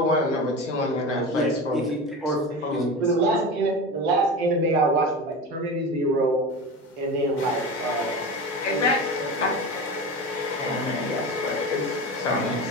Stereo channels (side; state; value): both; normal; correlation 0.27